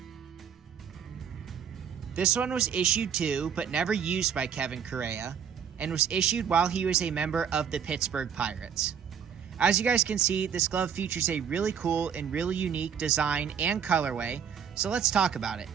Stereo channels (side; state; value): left; quieter; 7.8 dB